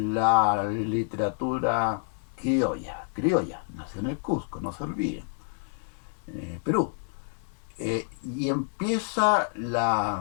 literatura criolla, nació en el Cusco, no se olviden, Perú. Y empieza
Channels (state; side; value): silent; right; 59 dB below the other